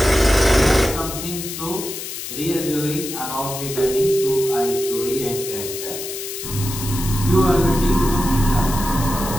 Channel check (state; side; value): noise; left; hiss, 8 dB below the sound